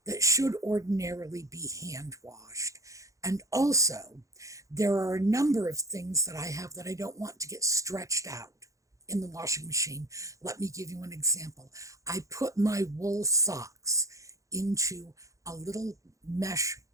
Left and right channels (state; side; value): late; left; 0.16 ms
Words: that should ordinarily be hand washed. And also, there are a number of things that I have that I don't want to get stretched out in the washing machine. Let me give you an example. I put my wool socks into a little mesh